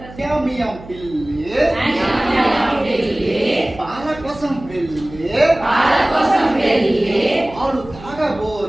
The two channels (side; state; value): right; noise; hum, 18 dB below the sound